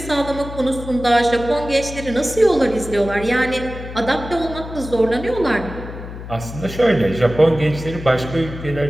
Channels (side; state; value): left; noise; hum, 11 dB below the sound